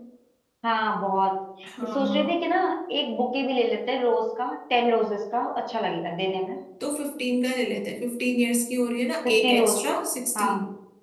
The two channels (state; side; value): identical; both; correlation 1.00